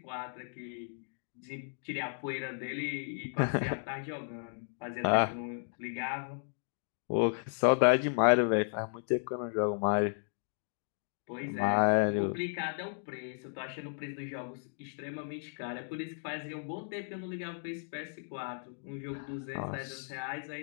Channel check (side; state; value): right; silent; digital silence